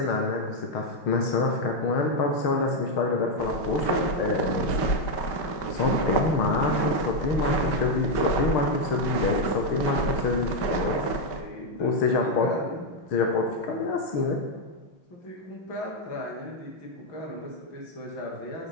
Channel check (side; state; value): right; late; 5.2 ms